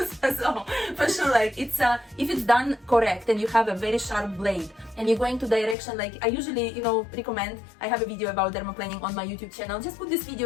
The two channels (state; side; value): drops out; right; at 5.8 s